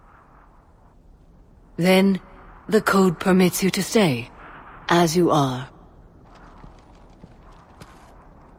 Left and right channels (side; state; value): both; identical; correlation 1.00